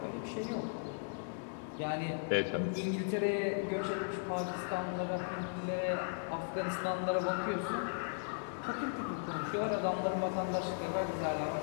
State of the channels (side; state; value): right; silent; digital silence